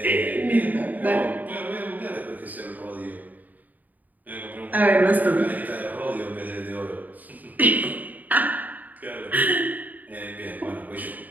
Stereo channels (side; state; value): left; late; 0.081 ms